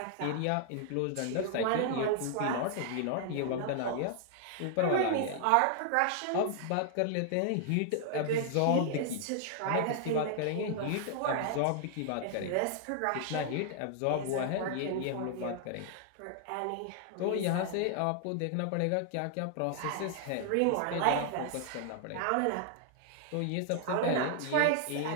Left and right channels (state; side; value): different; both; correlation 0.00